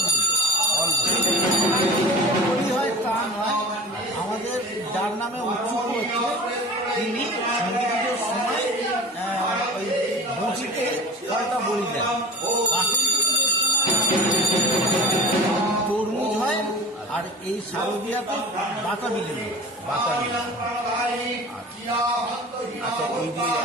বলি। বলি হয় তা নয়, আমাদের যার নামে উৎসুক হচ্ছে তিনি সন্ধ্যা পুজোর সময় ওই বঁচিতে ফলটা বলি দেন। তরমুজ হয়, আর এই শারদীয়াতে বাতাবি লেবু। আচ্ছা, এই যে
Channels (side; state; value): both; normal; correlation 0.37